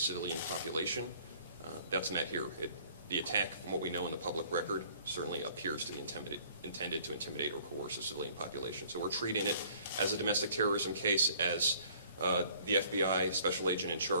population. That's met here. The attack, from what we know in the public record, certainly appears to be intended to intimidate or coerce a civilian population. So we're treating it as a domestic terrorism case, as the FBI special agent in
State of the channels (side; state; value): both; inverted; correlation -0.56